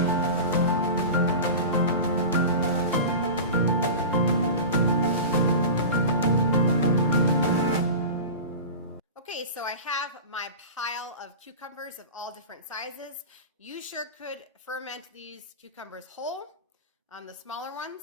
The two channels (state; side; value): inverted; both; correlation -0.31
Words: Okay, so I have my pile of cucumbers of all different sizes. You sure could ferment these cucumbers whole, the smaller